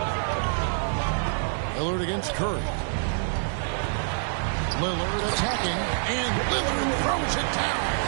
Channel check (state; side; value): silent; left; digital silence